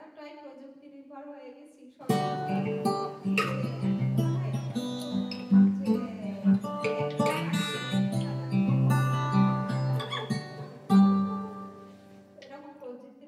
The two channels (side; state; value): both; identical; correlation 1.00